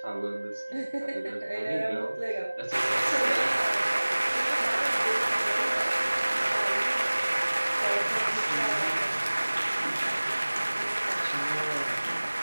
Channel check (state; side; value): inverted; both; correlation -1.00